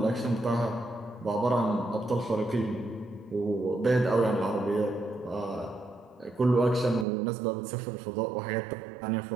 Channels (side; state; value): left; drops out; at 7.1 s